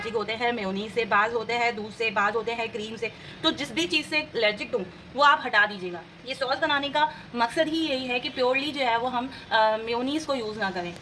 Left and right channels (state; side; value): identical; both; correlation 1.00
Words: होते हैं मेयोनीज से, बाज़ होते हैं दूध से, बाज़ होते हैं क्रीम से, तो जिस भी चीज़ से एलर्जिक हूँ वो आप हटा दीजिएगा। ये सॉस बनाने का मकसद ही यही है कि प्योरली जो है वो हम मेयोनीज़ को यूज़ ना करें,